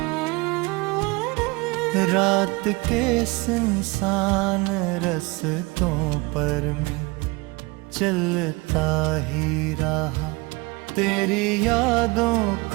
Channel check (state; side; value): quieter; left; 25.2 dB